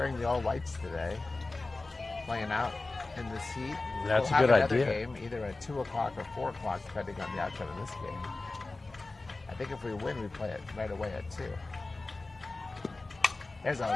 the all whites today, playing out in this heat. That's We'll a good have another idea. game either at 2 o'clock or 4 o'clock, depending on the outcome of this game. I think if we win, we play it right away at 2. There's a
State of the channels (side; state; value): right; quieter; 3.3 dB